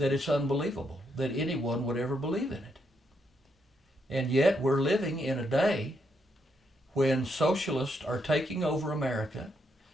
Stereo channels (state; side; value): normal; both; correlation 0.78